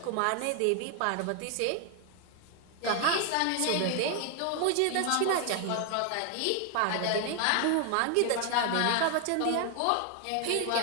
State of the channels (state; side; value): different; both; correlation 0.00